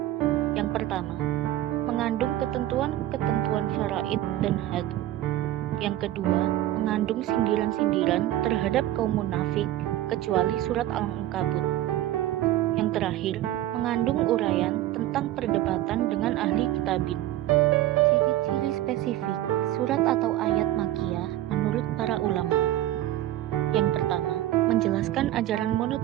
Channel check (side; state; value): left; quieter; 14.1 dB